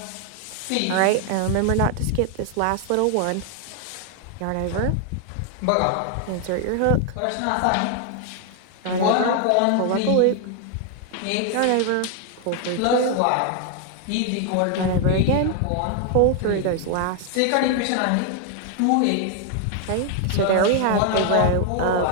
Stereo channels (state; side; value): different; both; correlation 0.00